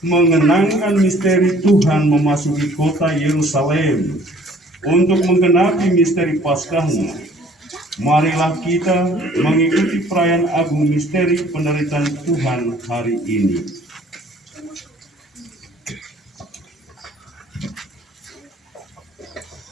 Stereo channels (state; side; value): normal; both; correlation 0.55